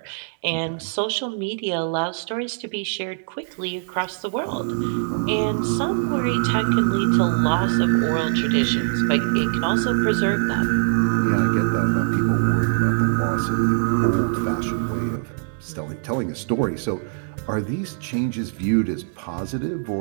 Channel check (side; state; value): left; silent; digital silence